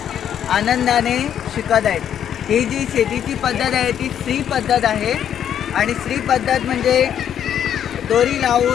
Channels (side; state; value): right; quieter; 9.5 dB